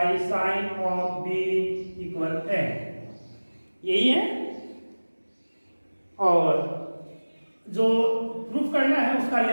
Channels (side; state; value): both; inverted; correlation -1.00